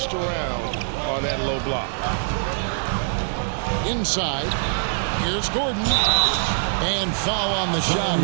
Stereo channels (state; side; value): silent; left; digital silence